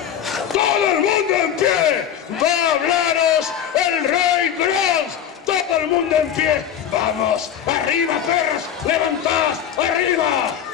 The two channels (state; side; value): quieter; right; 9.3 dB